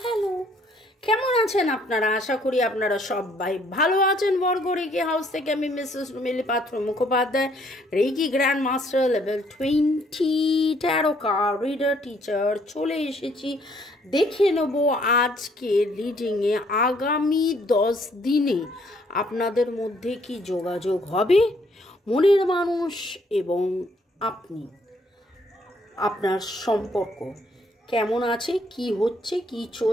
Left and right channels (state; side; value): normal; both; correlation 0.66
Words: hello, কেমন আছেন আপনারা? আশা করি আপনারা সবাই ভালো আছেন। বর্গ রেকি হাউস থেকে আমি Mrs Rumili Patra Mukhopadhyay, reiki grand master level 20 tarot card reader teacher চলে এসেছি। দেখে নেব আজকে রিডিংয়ে আগামী 10 দিনে আপনাদের মধ্যে কি যোগাযোগ হবে, মনের মানুষ এবং আপনি, আপনার সম্পর্ক কেমন আছে, কি হচ্ছে, কি